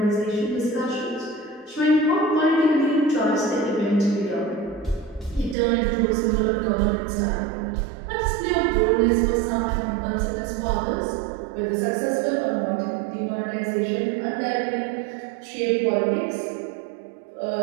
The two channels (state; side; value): drops out; left; at 5.6 s